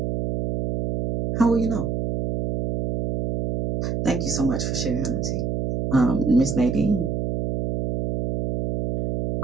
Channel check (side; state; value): right; noise; hum, 2 dB below the sound